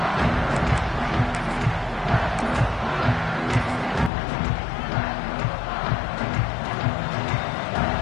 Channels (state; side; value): drops out; right; at 4.1 s